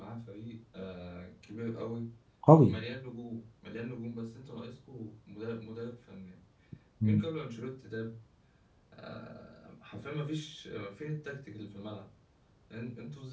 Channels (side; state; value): both; identical; correlation 1.00